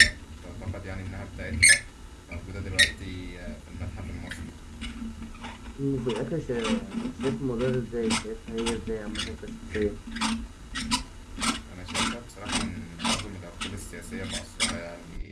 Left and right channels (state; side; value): identical; both; correlation 1.00